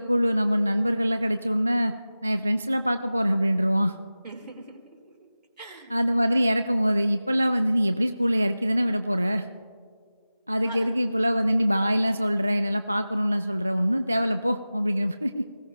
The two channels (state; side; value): inverted; both; correlation -0.97